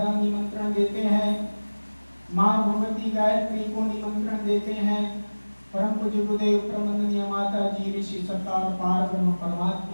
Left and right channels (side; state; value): both; inverted; correlation -1.00